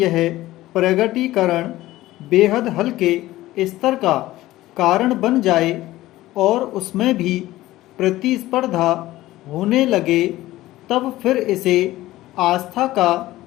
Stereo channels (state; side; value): quieter; right; 16.4 dB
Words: प्रगटीकरण बेहद हल्के स्तर का कारण बन जाए और उसमें भी प्रतिस्पर्धा होने लगे, तब फिर इसे आस्था का